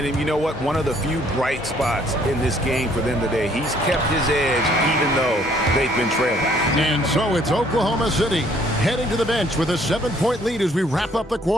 you know what? One of the few bright spots in this game for them today. He's kept his edge even though they've been trailing. And so it's Oklahoma City heading to the bench with a 7-point lead as we wrap up the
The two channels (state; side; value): normal; both; correlation 0.63